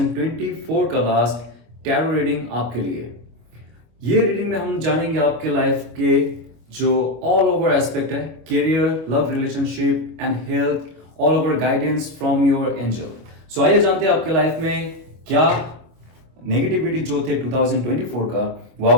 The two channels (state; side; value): late; left; 25 ms